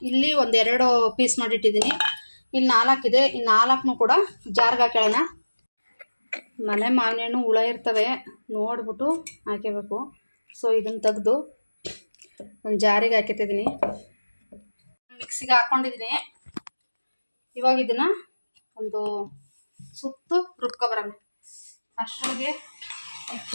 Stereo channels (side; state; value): both; inverted; correlation -1.00